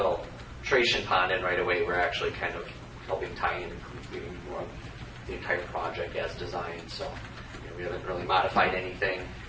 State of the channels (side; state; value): both; identical; correlation 1.00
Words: pond in right away, we're actually kind of helping tie in and completing more of the entire project as designed. So we haven't really modified anything